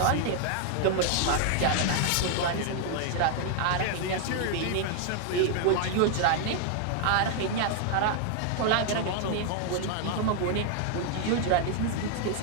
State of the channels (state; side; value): different; both; correlation 0.00